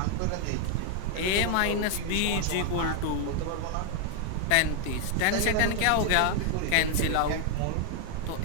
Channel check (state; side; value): different; both; correlation 0.00